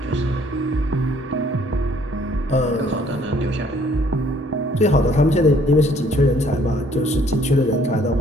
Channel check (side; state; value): both; normal; correlation 0.61